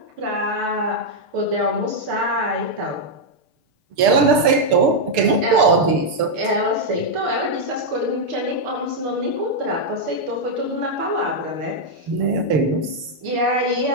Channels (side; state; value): left; late; 6.7 ms